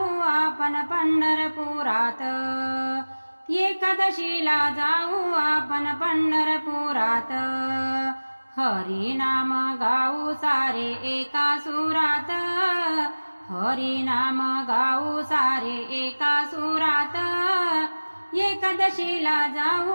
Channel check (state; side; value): inverted; both; correlation -1.00